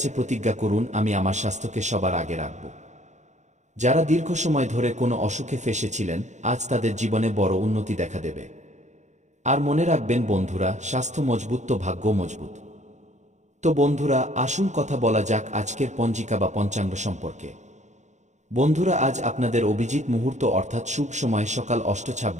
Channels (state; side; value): late; left; 0.34 ms